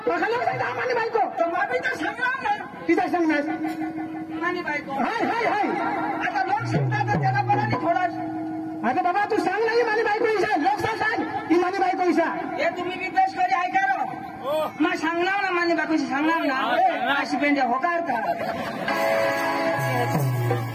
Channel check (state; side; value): identical; both; correlation 1.00